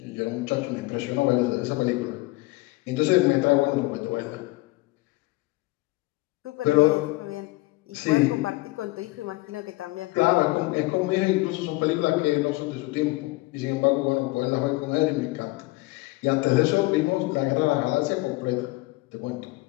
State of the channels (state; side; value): quieter; right; 21.8 dB